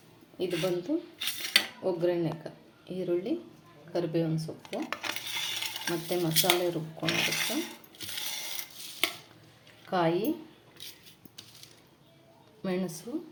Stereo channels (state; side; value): identical; both; correlation 1.00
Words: ಇದು ಬಂದು ಒಗ್ಗರಣೆಗೆ ಈರುಳ್ಳಿ, ಕರಿಬೇವಿನ ಸೊಪ್ಪು ಮತ್ತು ಮಸಾಲೆ ರುಬ್ಕೊಂಡಿರುತ್ತೆ, ಕಾಯಿ, ಮೆಣಸು,